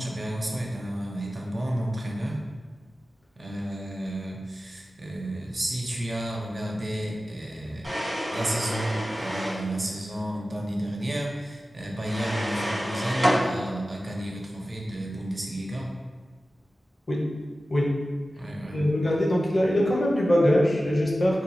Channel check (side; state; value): both; normal; correlation 0.95